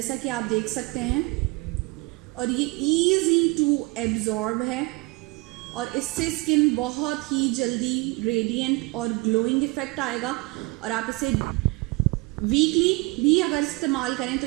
कि आप देख सकते हैं। और ये इजी टू एब्जॉर्ब है और इससे स्किन बहुत ही जल्दी रेडिएंट और ग्लोइंग इफेक्ट आएगा। और आप इसे वीकली भी अगर इस्तेमाल करें तो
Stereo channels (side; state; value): left; quieter; 24.5 dB